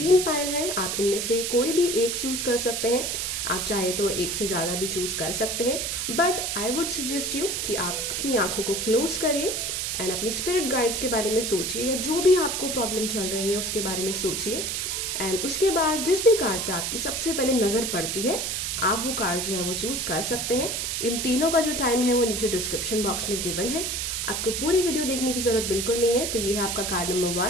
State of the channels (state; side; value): noise; right; hiss, 1 dB below the sound